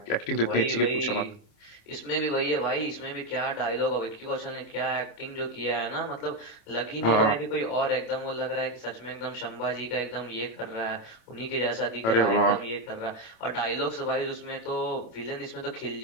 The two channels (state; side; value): late; right; 27 ms